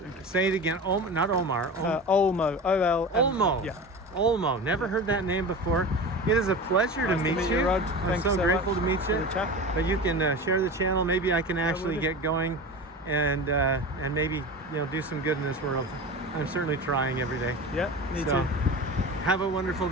say it again. Not Omar. Olmo. Olmo. Yeah. Olmo. Never heard that name before. It is a pleasure to meet you. Rod. I'm so grateful to meet you. But you can share the channel. Maybe I can actually get going, and maybe do some good in this world. I'm certainly trying every day. Yeah, me too. Have a wonderful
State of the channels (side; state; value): both; normal; correlation 0.30